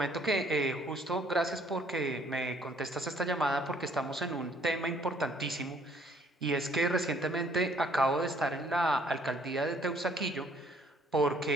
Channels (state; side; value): normal; both; correlation 0.62